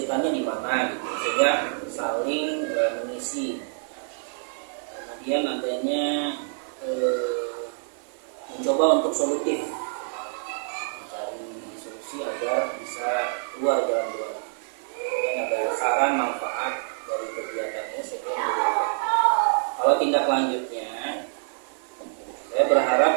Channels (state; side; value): silent; left; 55 dB below the other